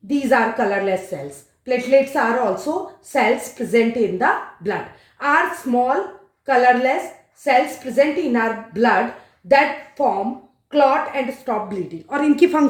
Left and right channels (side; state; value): both; identical; correlation 1.00